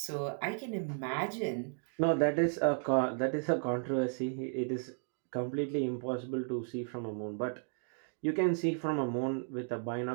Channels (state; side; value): silent; left; digital silence